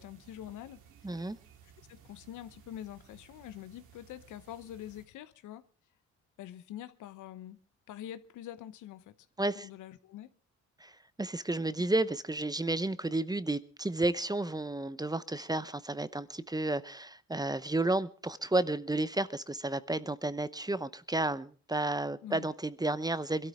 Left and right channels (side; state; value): both; normal; correlation 0.67